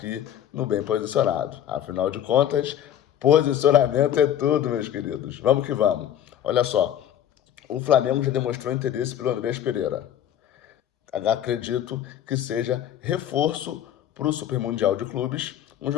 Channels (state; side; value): quieter; right; 10.5 dB